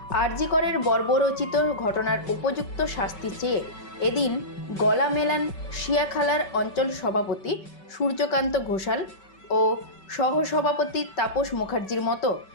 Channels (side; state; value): right; late; 5.2 ms